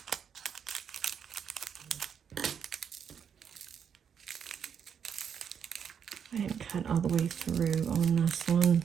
I didn't cut all the way through on this one.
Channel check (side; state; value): left; quieter; 7.6 dB